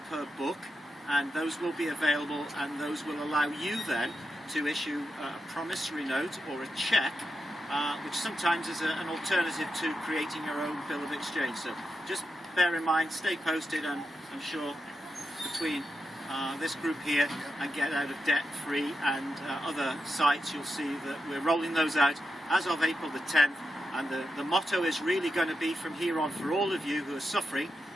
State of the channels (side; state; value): both; normal; correlation 0.87